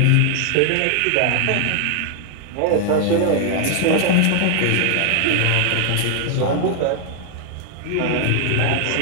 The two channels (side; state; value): both; different; correlation 0.00